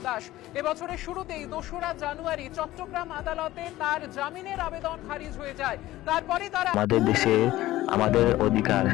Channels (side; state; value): right; quieter; 16.0 dB